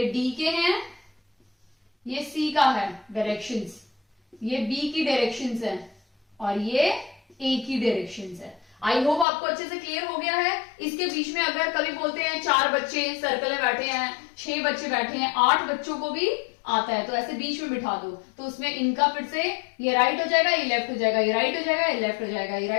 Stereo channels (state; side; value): drops out; right; at 9.2 s